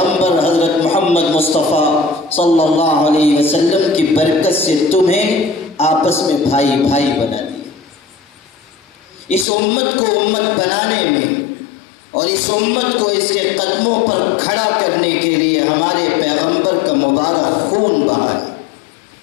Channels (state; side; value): drops out; right; at 9.5 s